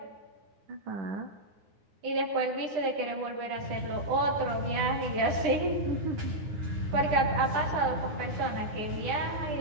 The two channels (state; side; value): late; left; 10 ms